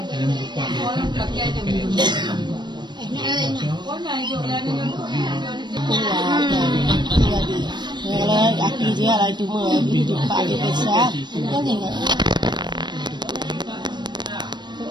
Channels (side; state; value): left; late; 0.22 ms